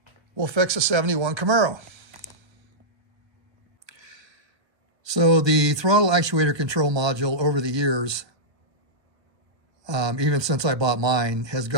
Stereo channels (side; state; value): left; late; 1.2 ms